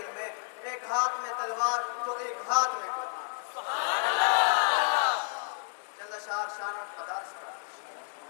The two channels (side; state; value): right; silent; digital silence